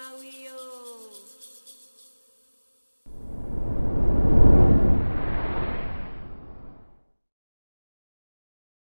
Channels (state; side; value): inverted; both; correlation -1.00